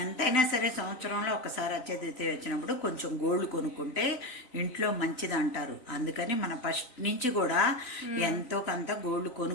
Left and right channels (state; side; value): late; right; 3.9 ms